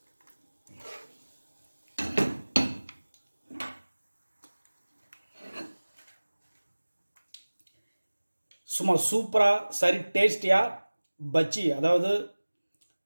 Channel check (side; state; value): both; inverted; correlation -1.00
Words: சும்மா சூப்பராக சரி டேஸ்டியாக பஜ்ஜி, அதாவது